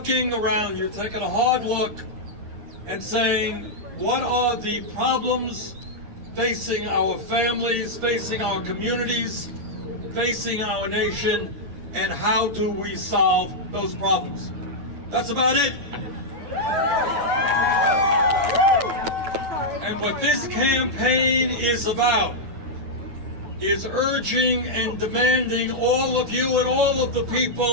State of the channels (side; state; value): left; late; 9.8 ms